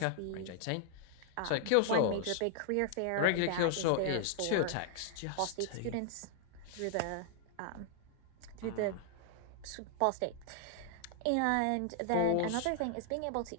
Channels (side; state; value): both; different; correlation 0.00